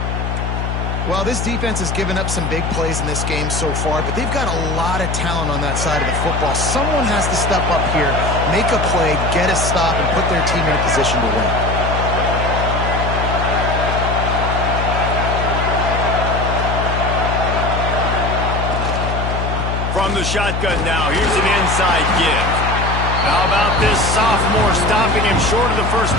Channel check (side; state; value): left; noise; hum, 2 dB below the sound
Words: Well, this defense has given up some big plays in this game so far, but they've got a lot of talent on that side of the football. Someone has to step up here, make a play, get a stop, and put their team in a position to win. From the shotgun now, here's an inside give. How about this sophomore stopping him short of the 1st